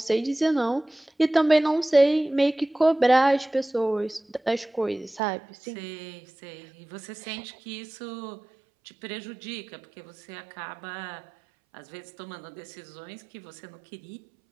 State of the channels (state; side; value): drops out; left; at 5.2 s